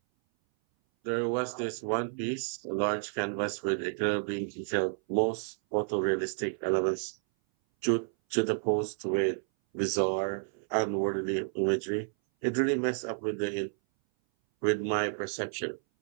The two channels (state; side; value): silent; left; 57 dB below the other